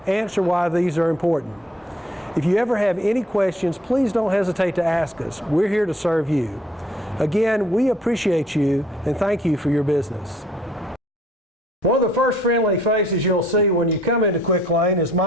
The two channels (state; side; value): normal; both; correlation 0.61